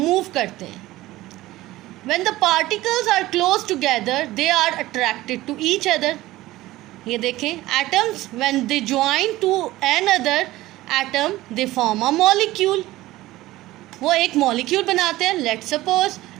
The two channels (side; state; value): left; quieter; 17.2 dB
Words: करते हैं. When the particles are close together, they are attracted to each other. ये देखें, atoms when they join to another atom, they form a molecule. वो एक molecule बनाते हैं. Let's suppose